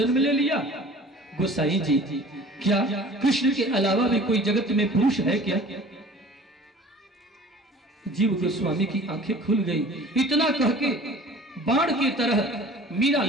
ले लिया? गोसाई जी, क्या कृष्ण के अलावा भी कोई जगत में पुरुष है क्या? जीव गोस्वामी की आंखें खुल गई। इतना कह के बाण की तरह मीरा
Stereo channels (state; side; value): normal; both; correlation 0.46